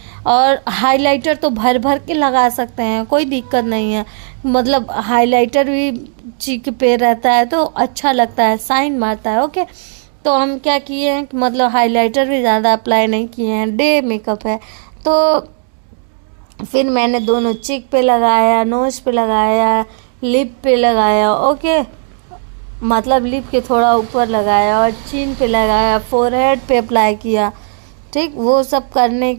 और हाइलाइटर तो भर भर के लगा सकते हैं, कोई दिक्कत नहीं है। मतलब हाइलाइटर भी चीक पे रहता है तो अच्छा लगता है, शाइन मारता है। ओके, तो हम क्या किए हैं कि मतलब हाइलाइटर भी ज़्यादा अप्लाई नहीं किए हैं, डे मेकअप है। तो फिर मैंने दोनों चिक पे लगाया, नोज पे लगाया, लिप पे लगाया। ओके, मतलब लिप के थोड़ा ऊपर लगाया और चिन पे लगाया, फोरहेड पे अप्लाई किया। ठीक, वो सब करने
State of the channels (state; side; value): silent; left; digital silence